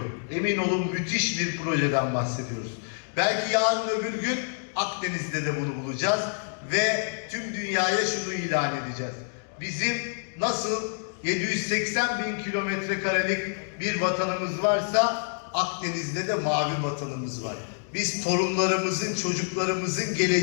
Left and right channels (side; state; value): right; silent; digital silence